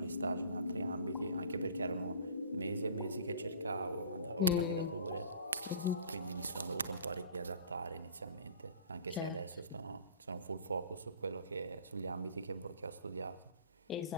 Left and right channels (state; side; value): inverted; both; correlation -0.47